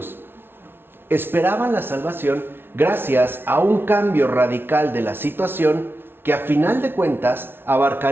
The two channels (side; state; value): left; late; 0.11 ms